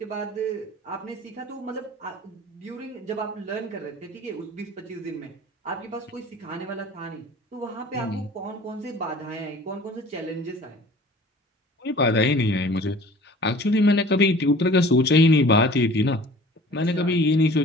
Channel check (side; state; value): both; normal; correlation 0.46